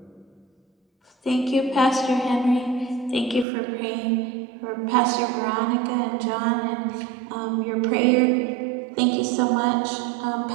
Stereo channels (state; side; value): drops out; left; at 3.5 s